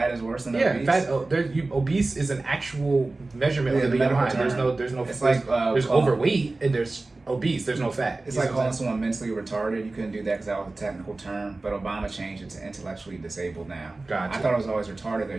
is worse than obese. Yeah, obese is an actual measurement of the BMI. There's no. It's there's overweight and there's obese. There's no fat. It's like calling someone mentally retarded. You couldn't do that because that was a technical term. But Obama changed it to intellectually disabled now. Gotcha. I thought it was always retarded though.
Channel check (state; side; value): quieter; left; 3.2 dB